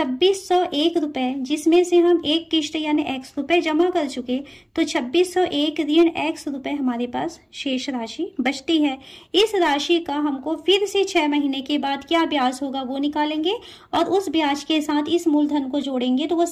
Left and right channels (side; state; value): both; identical; correlation 1.00